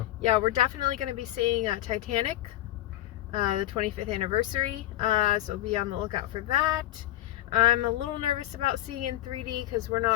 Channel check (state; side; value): quieter; right; 14.8 dB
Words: yeah, we're definitely gonna be seeing Titanic, the 25th anniversary. So be on the lookout for that. I'm a little nervous about seeing in 3D because we're